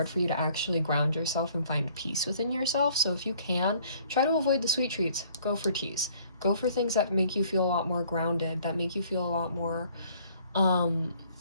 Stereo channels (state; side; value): inverted; both; correlation -0.59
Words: for you to actually ground yourself and find peace within yourself. So if you can, try to avoid the sweet treats. Go for teas. Go for things that make you feel a lot more grounded, that make you feel a lot more